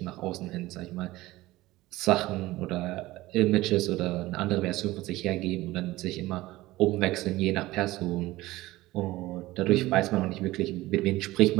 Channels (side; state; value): left; quieter; 18.1 dB